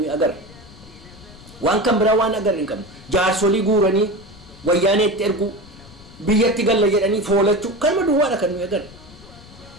agarra waan kan biraa waan agarra hin qabnu jaarsolii guuranii wayyaaneetti ergu biyyatti galla jedhanii foolachuu kanuma duwwaadha kan nuyi agarra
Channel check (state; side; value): noise; left; rumble, 21 dB below the sound